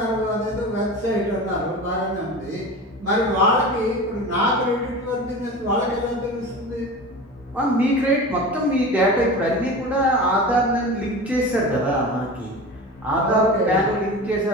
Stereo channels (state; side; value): normal; both; correlation 0.31